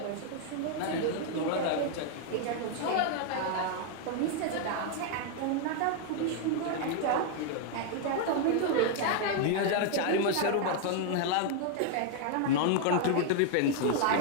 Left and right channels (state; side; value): different; both; correlation 0.00